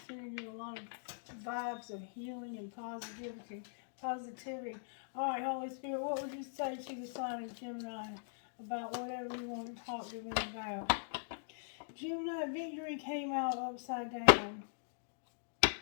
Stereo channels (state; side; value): silent; right; digital silence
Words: sending you a lot of vibes of healing and positivity. All right, Holy Spirit, what would you say to the sign of Gemini about whatever you want to talk to them about? Gemini, victory came out upside down.